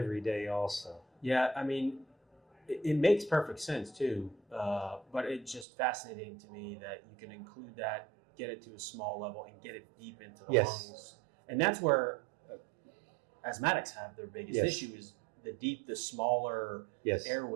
day also. Yeah, I mean, it makes perfect sense too, but it's just fascinating to me that you can include that, get it to a small level, and get it deep into the lungs. And that's where asthmatics have their biggest issue is the smaller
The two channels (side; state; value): left; drops out; at 5.7 s